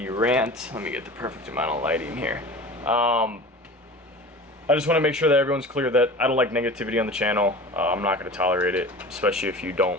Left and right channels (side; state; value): both; normal; correlation 0.36